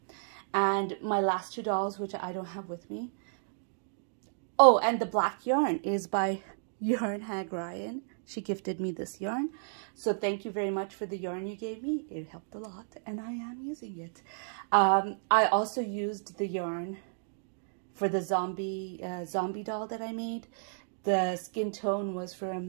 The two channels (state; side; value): silent; left; digital silence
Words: And my last two dolls, which I don't have with me. Oh, and the black yarn is by Yarn Hag Ryan. She gifted me this yarn. So thank you very much for the yarn you gave me. It helped a lot, and I am using it. I also used the yarn for the zombie doll that I made. The skin tone was